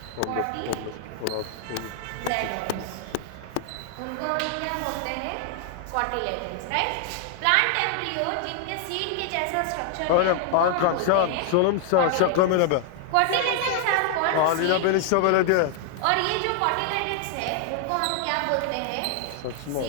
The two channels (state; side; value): different; both; correlation 0.00